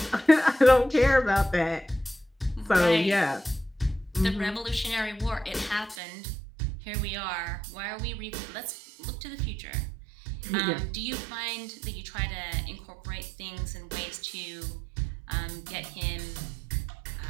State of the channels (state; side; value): drops out; left; at 6.0 s